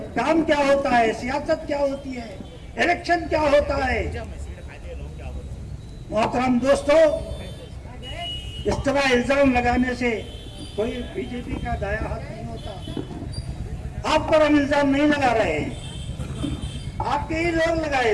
काम क्या होता है, सियासत क्या होती है, इलेक्शन क्या होता है। मोहतरम दोस्तों, इस तरह इल्जाम लगाने से कोई बीजेपी का दाया हाथ नहीं होता। आप पर हम इल्जाम नहीं लगा रहे हैं, आपके ही लोग लगाए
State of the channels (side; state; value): both; identical; correlation 1.00